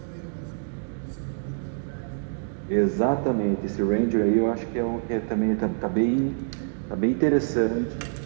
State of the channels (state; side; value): silent; left; digital silence